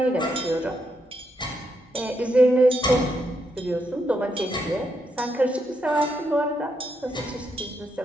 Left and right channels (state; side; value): normal; both; correlation 0.80